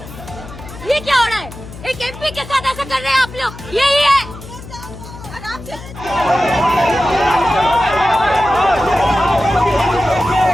ये क्या हो रहा है? एक एमपी के साथ ऐसा कर रहे हैं आप लोग, यही है।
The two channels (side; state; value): left; noise; hum, 15 dB below the sound